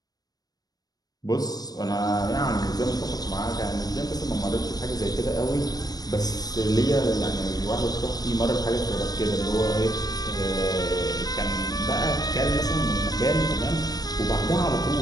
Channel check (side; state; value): right; late; 0.19 ms